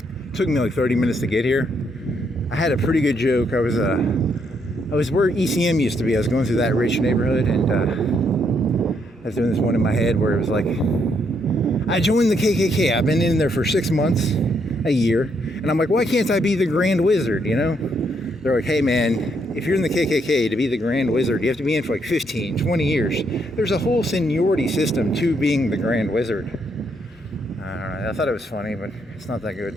Took me like 30 minutes to get here. I had a pretty good joke. I was where ECM used to be. I was going through that rich neighborhood, and I was doing this one in my head where it was like, I joined the KKK. I've been in there for 6 months, a year, and I'm like, why can't I be the Grand Wizard, you know? They're like, hey man, if you're in the KKK, to be the Grand Wizard, you have to be in for like 15, 20 years. There's a whole seniority system to being the Grand Wizard. I don't know, I thought it was funny, but it's not that good.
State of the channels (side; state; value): both; normal; correlation 0.74